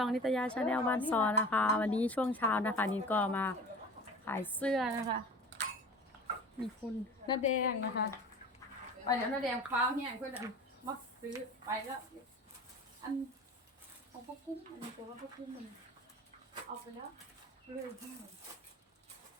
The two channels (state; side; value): normal; both; correlation 0.38